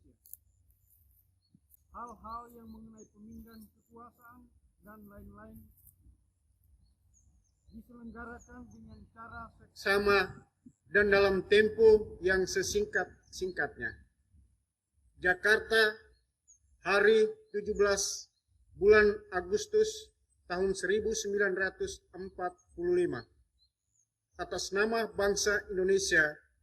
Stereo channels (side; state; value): both; identical; correlation 1.00